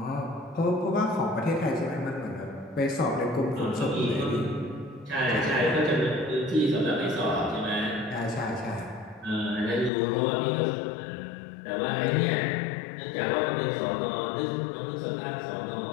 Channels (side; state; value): right; drops out; at 9.9 s